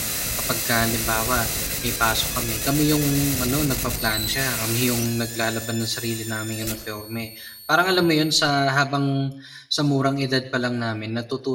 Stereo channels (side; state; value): both; identical; correlation 1.00